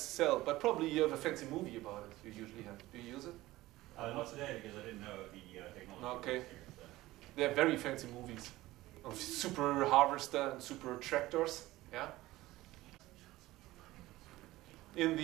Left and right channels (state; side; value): quieter; left; 17.5 dB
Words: but probably you have a fancy movie about it. You usually have. Do you use it? Not today, because I didn't know the technology. Okay. was here, so. They're very fancy movies of super harvester and super tractors. Yeah. In